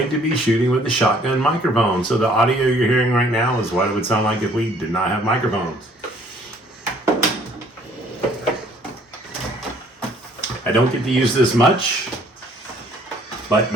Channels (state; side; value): normal; both; correlation 0.59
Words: to be shooting with the shotgun microphone. So the audio you're hearing right now is what it would sound like if we did not have microphones. I don't get to use this much, but